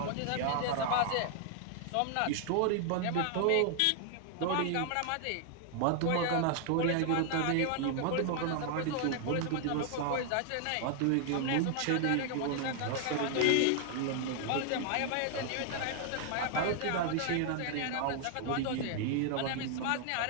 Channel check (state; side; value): different; both; correlation 0.00